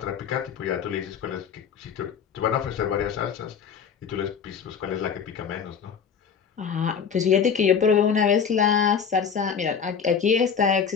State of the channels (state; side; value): quieter; right; 6.9 dB